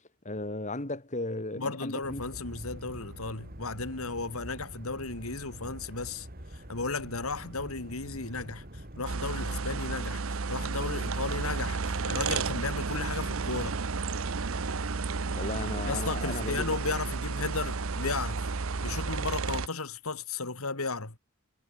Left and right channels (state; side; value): normal; both; correlation 0.15